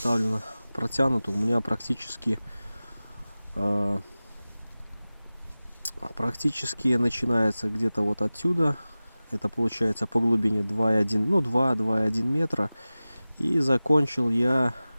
протянуто, у меня практически начинается где-то вот отсюда. Это получается по глубине 2,1, ну 2,1 метра. И закончил я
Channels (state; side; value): inverted; both; correlation -0.97